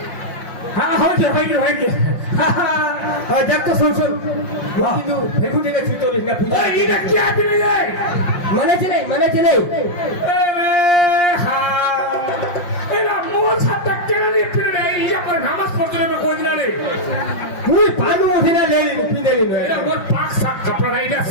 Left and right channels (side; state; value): right; late; 5.7 ms